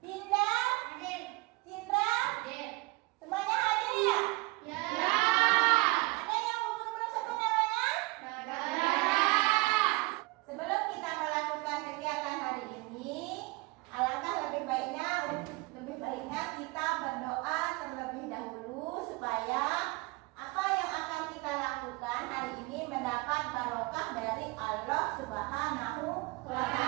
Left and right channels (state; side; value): quieter; left; 24.6 dB